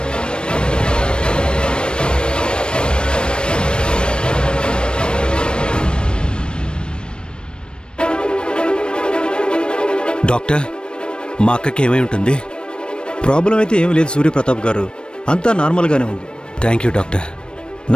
డాక్టర్, మా అక్కకి ఏమై ఉంటుంది? ప్రాబ్లం అయితే ఏమీ లేదు సూర్యప్రతాప్ గారు, అంతా నార్మల్గానే ఉంది. Thank you doctor.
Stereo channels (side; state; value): right; late; 0.053 ms